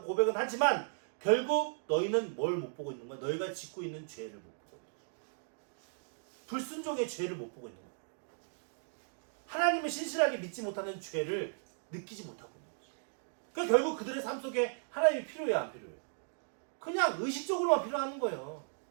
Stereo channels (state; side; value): silent; left; digital silence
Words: 고백은 하지만 결국 너희는 뭘 못 보고 있는 거야? 너희가 짓고 있는 죄를 못 보고 있는 거야. 불순종의 죄를 못 보고 있는 거야. 하나님을 신실하게 믿지 못하는 죄를 느끼지 못하고 있는 거죠. 그러니까 결국 그들의 삶 속에 하나님이 필요해요, 안 필요해요? 그냥 의식적으로만 필요한 거예요.